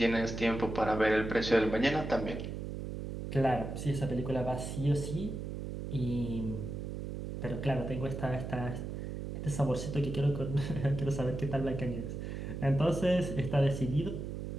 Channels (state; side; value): noise; right; hum, 6 dB below the sound